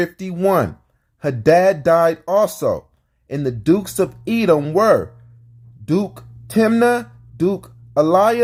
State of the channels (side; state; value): both; identical; correlation 1.00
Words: Hadad died also, and the dukes of Edom were Duke Timnah, Duke